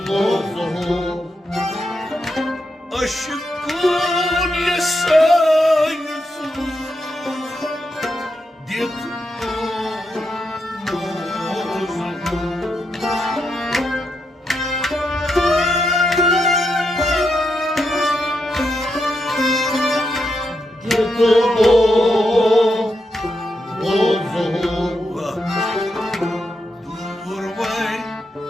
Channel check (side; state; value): both; normal; correlation 0.83